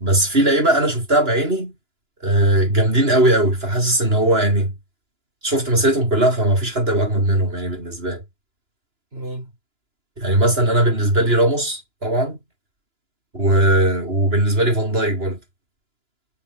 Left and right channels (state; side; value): late; left; 2.9 ms